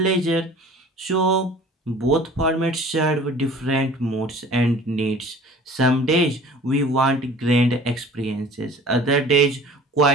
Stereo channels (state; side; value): normal; both; correlation 0.46